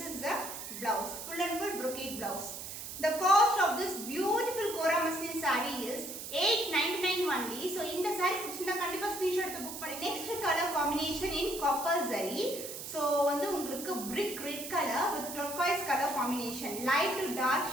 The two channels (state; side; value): noise; right; hiss, 9 dB below the sound